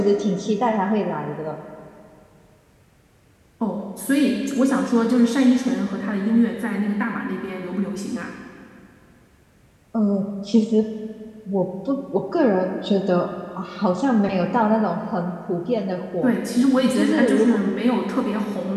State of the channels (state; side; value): identical; both; correlation 1.00